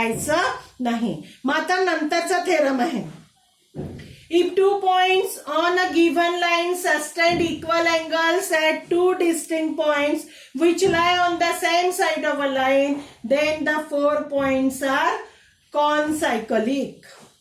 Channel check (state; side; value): identical; both; correlation 1.00